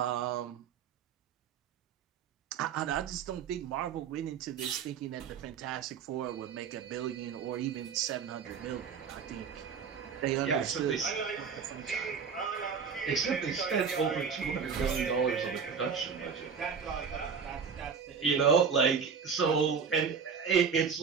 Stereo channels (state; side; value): quieter; left; 6.3 dB